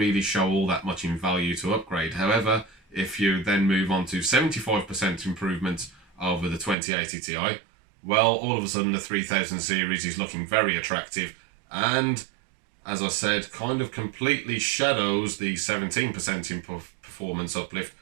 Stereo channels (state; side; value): drops out; left; at 6.8 s